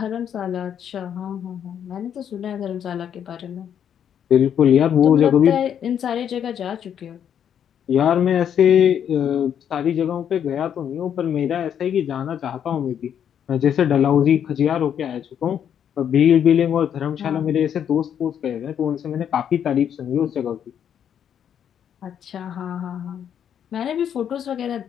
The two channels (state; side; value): quieter; right; 8.9 dB